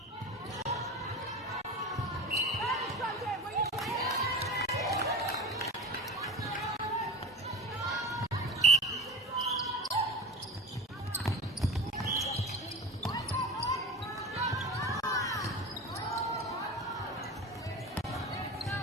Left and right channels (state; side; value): normal; both; correlation 0.30